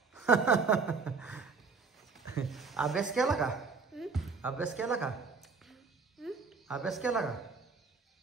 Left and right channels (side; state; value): left; quieter; 4.8 dB